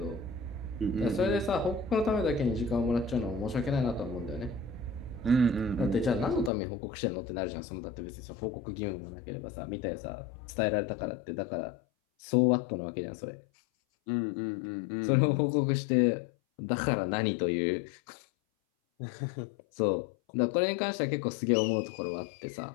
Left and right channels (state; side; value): drops out; right; at 6.5 s